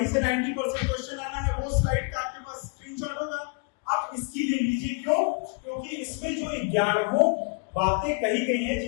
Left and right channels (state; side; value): quieter; right; 35.0 dB